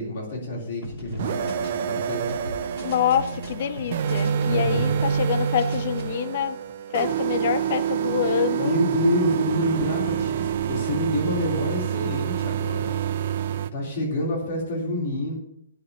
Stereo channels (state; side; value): inverted; both; correlation -0.54